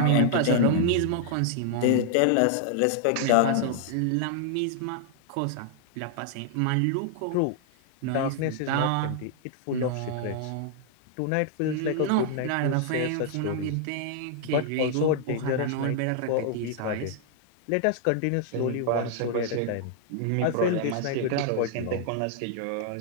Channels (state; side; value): different; both; correlation -0.01